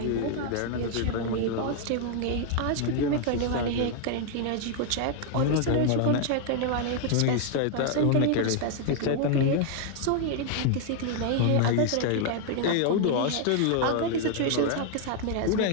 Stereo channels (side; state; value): both; different; correlation 0.00